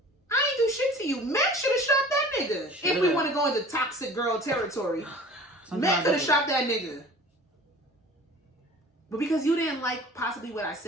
I ain't do shit to you. Meg should have shot that nigga. If we want to go into toxic girl territory. Meg could have shot that nigga. But because you didn't like possibly what I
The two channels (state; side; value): normal; both; correlation 0.44